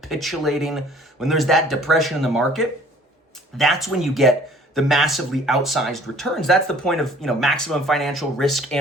when there's that depression in the market, that's when you get the massively outsized returns. That's the point of, maximum financial risk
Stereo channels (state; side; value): normal; both; correlation 0.54